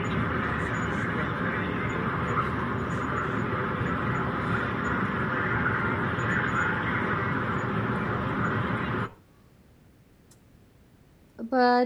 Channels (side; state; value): both; identical; correlation 1.00